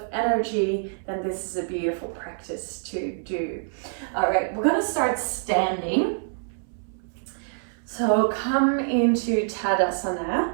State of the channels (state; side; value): silent; left; 61 dB below the other